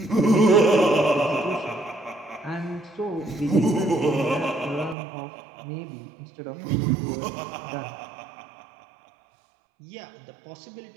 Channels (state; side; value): drops out; left; at 5.0 s